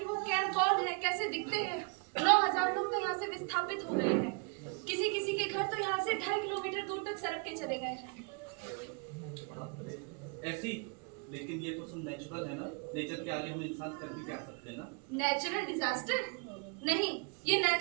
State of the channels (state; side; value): quieter; left; 35.4 dB